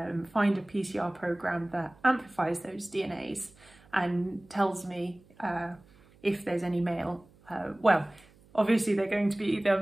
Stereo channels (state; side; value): noise; right; hum, 28 dB below the sound